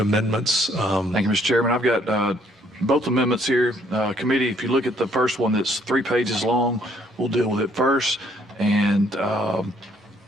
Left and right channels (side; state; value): both; normal; correlation 0.65